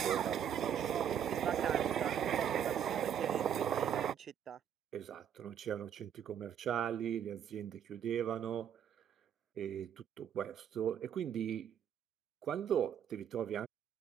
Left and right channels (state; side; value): quieter; left; 8.9 dB